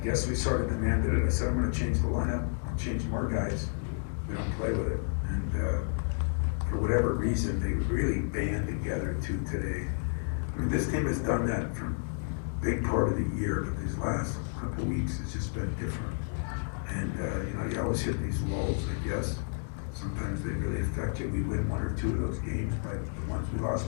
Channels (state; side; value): silent; right; digital silence